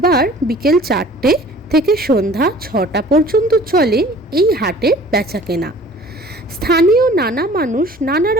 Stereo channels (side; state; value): both; normal; correlation 0.48